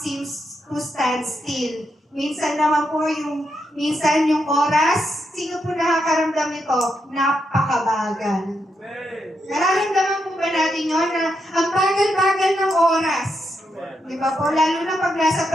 to stand still. Minsan naman po minsan yung oras, sino po nakakaramdam nito? Napakabagal. Nararamdaman po ba natin yun na ang bagal-bagal ng oras? Di ba po? Lalo na pag nasa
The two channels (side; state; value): both; normal; correlation 0.82